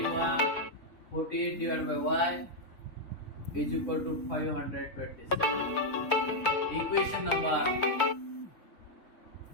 148 divided by y is equal to 527. Equation number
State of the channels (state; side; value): late; right; 3.5 ms